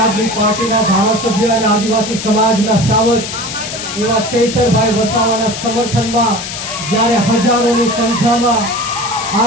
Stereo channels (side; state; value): left; noise; hiss, 7 dB below the sound